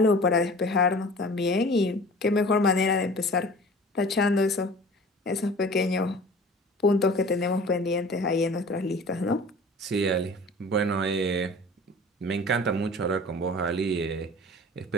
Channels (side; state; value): both; normal; correlation 0.43